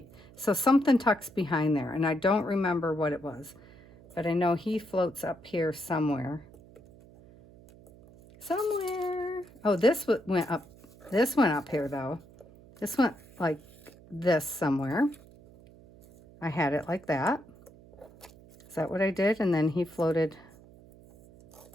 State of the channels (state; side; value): noise; right; hum, 23 dB below the sound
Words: something tucks behind there, and I don't remember what it was. But I know he floats up here somewhere. Somewhere. Oh, this went up. This went up here, though. This went like this somewhere. I had it like that. Is that what I did? And then he floated.